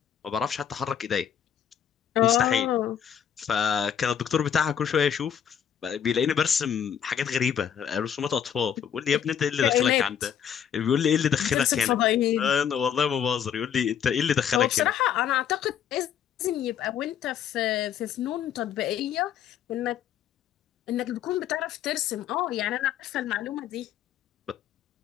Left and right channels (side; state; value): right; quieter; 8.8 dB